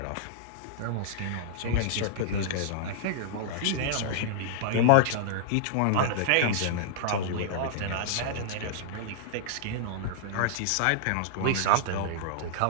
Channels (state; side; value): different; both; correlation -0.01